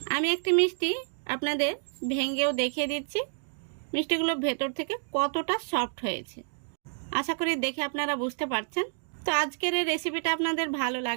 আমি একটি মিষ্টি আপনাদের ভেঙেও দেখিয়ে দিচ্ছি, মিষ্টিগুলো ভেতর থেকে কতটা সফট হয়েছে। আশা করি দেখে আপনারা বুঝতে পারছেন। তো আজকের এই রেসিপিটা আপনাদের ভালো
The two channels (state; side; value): silent; left; digital silence